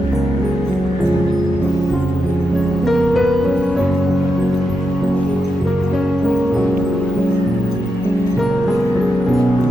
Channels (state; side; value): normal; both; correlation 0.86